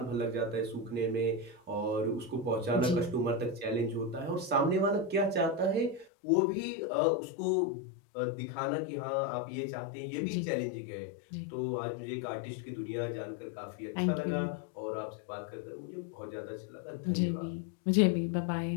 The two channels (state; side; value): drops out; right; at 6.1 s